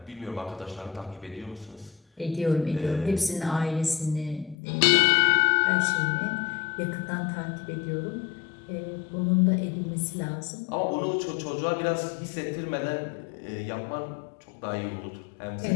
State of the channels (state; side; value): drops out; right; at 4.5 s